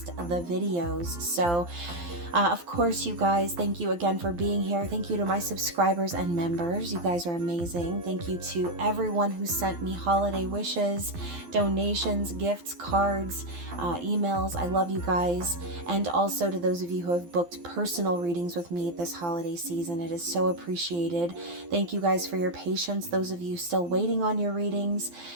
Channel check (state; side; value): late; left; 12 ms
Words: the videos. So of course, you guys, thank you again for being here. Thank you to my subscribers and members. You guys are amazing. Thank you to everyone who sent me holiday wishes, donations, gifts, cards, emails. I love you guys. And also to those of you who have booked personal readings with me this holiday season. It is so appreciated. Thank you guys for your patience. Those of you still waiting on your readings.